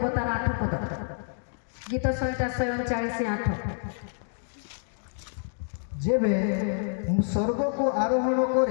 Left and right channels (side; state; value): right; silent; digital silence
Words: ତାର 8 ପଦ। ଗୀତ ସଂହିତା 49:8। ଯେବେ ମୁଁ ସ୍ୱର୍ଗକୁ ଆରୋହଣ